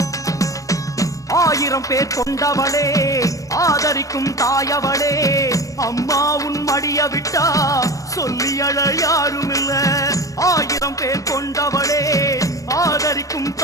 ஆயிரம் பேர் கொண்டவளே, ஆதரிக்கும் தாயவளே, அம்மா உன் மடிய விட்டா சொல்லி அழ யாரும் இல்ல. ஆயிரம் பேர் கொண்டவளே, ஆதரிக்கும்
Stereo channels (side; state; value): right; late; 0.16 ms